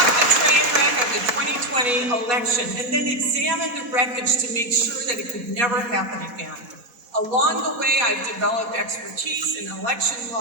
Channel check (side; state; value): left; late; 4.1 ms